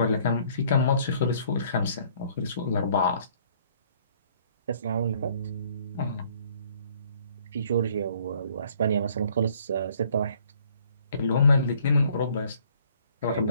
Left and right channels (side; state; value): both; inverted; correlation -0.59